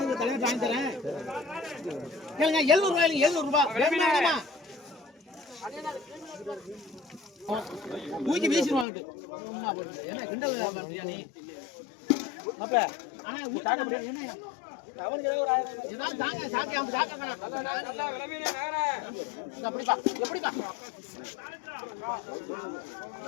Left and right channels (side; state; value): right; drops out; at 8.8 s